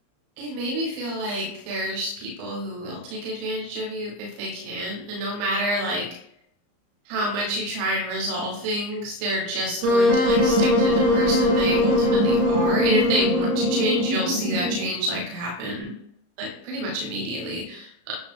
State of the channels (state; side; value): late; left; 34 ms